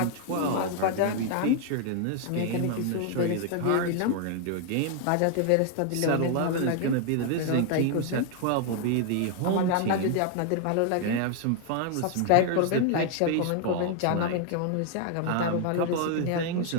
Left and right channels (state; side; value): different; both; correlation 0.00